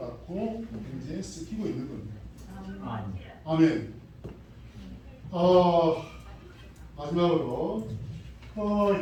현재 쓰이고 있는 겁니다. 아멘. 마지막으로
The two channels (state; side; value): identical; both; correlation 1.00